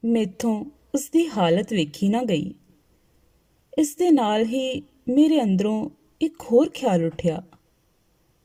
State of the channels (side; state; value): both; identical; correlation 1.00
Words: ਮੈਥੋਂ ਉਸਦੀ ਹਾਲਤ ਵੇਖੀ ਨਾ ਗਈ। ਇਸ ਦੇ ਨਾਲ ਹੀ ਮੇਰੇ ਅੰਦਰੋਂ ਇੱਕ ਹੋਰ ਖਿਆਲ ਉੱਠਿਆ,